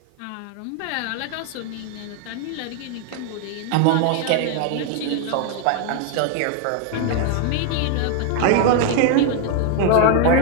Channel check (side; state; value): both; different; correlation 0.00